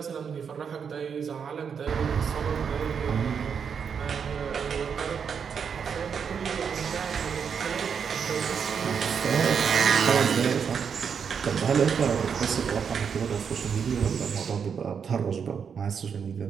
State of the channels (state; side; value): quieter; left; 6.8 dB